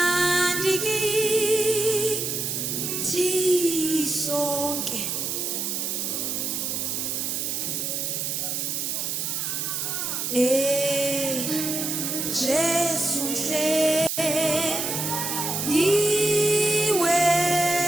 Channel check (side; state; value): right; noise; hiss, 2 dB below the sound